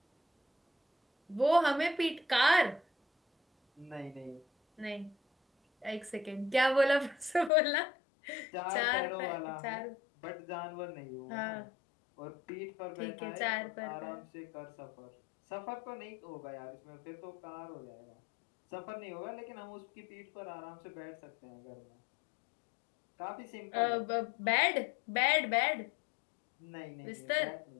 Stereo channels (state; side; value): drops out; right; at 7.5 s